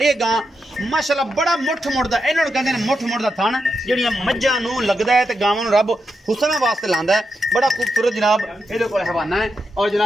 गां माशाअल्लाह बड़ा मुठ मुड़दा, इन्हां नूं कहंदे ने मुठ मुड़दा थण जिहड़ियां मज्झां नूं लगदा है ते गावां नूं रब हुसना वास्ते लांदा है। बड़ा खूबसूरत जनाब इहदे कोल हवाना है और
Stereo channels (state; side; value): normal; both; correlation 0.85